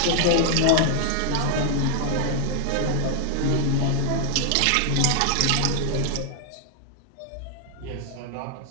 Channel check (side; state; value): both; different; correlation 0.00